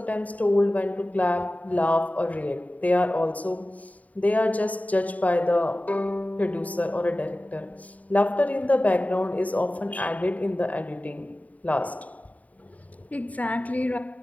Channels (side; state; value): right; late; 0.071 ms